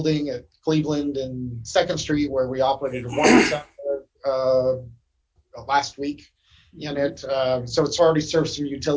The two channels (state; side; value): identical; both; correlation 1.00